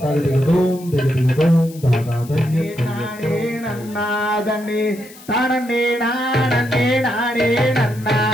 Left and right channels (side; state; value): left; noise; hiss, 21 dB below the sound